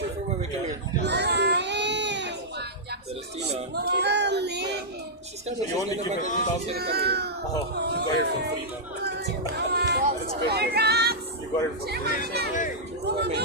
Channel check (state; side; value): normal; both; correlation -0.10